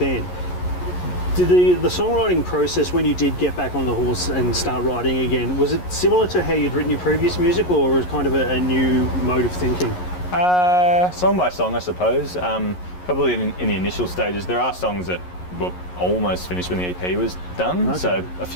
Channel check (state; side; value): late; right; 11 ms